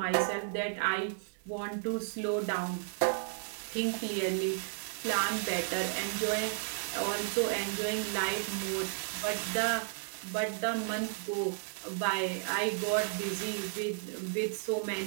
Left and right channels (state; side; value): silent; left; digital silence